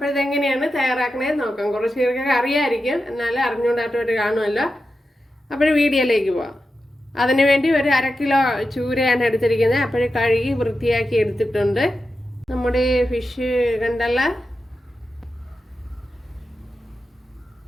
ഇതെങ്ങനെയാണ് തയ്യാറാക്കണേന്ന് നോക്കാം. കുറച്ച് പേർക്കൊക്കെ അറിയാമായിരിക്കും, എന്നാലും അറിഞ്ഞുകൊണ്ടായിട്ട് കാണുമല്ലോ. അപ്പോൾ വീഡിയോയിലേക്ക് പോവാം. അതിനുവേണ്ടി ഒരു 1/2 കിലോ ചൂരയാണ് എടുത്തിരിക്കുന്നത്. അപ്പോൾ കഴുകി വൃത്തിയാക്കി എടുത്തിട്ടുണ്ട്. നമ്മുടെ ഫിഷ് കണ്ടല്ല,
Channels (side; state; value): both; normal; correlation 0.90